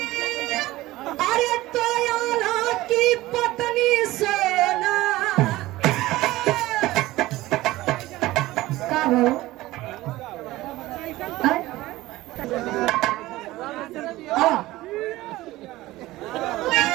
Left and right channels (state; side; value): quieter; left; 17.7 dB